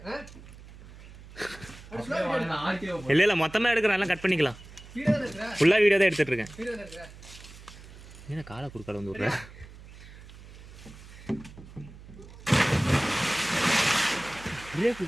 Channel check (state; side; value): noise; right; hum, 18 dB below the sound